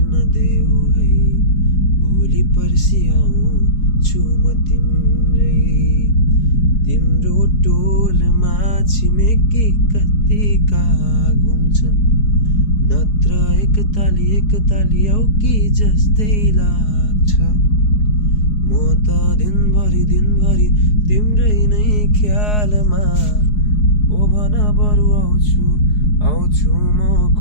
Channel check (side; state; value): right; late; 4.8 ms